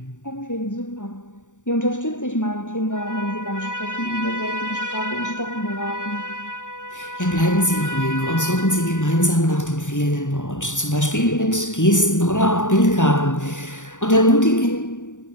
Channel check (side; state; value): right; late; 0.86 ms